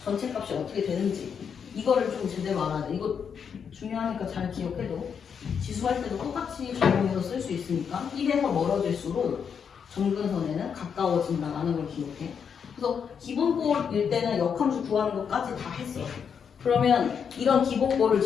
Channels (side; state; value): right; quieter; 7.0 dB